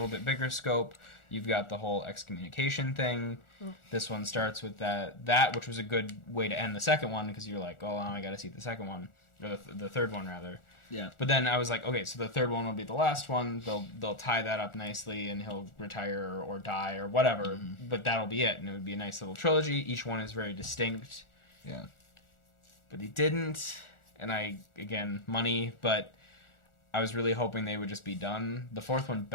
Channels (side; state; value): right; late; 1.4 ms